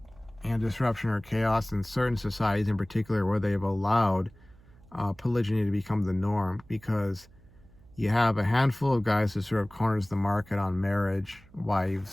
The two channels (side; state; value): right; noise; hum, 26 dB below the sound